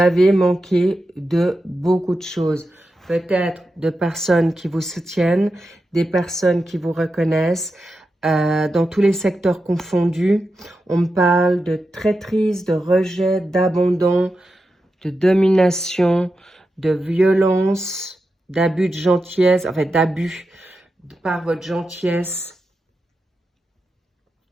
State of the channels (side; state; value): both; normal; correlation 0.89